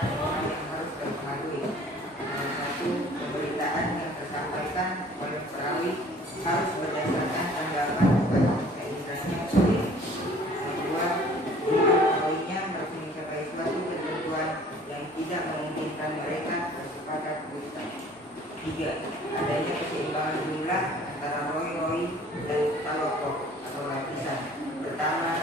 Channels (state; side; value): normal; both; correlation 0.52